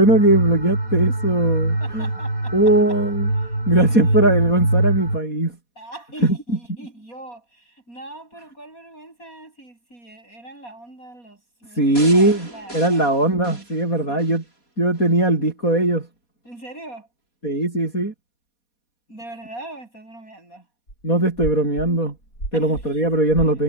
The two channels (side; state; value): right; late; 4.2 ms